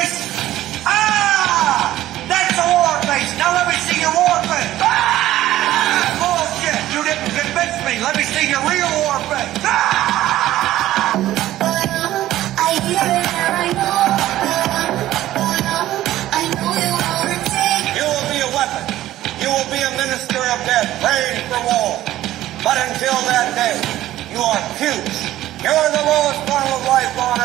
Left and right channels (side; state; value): left; quieter; 14.3 dB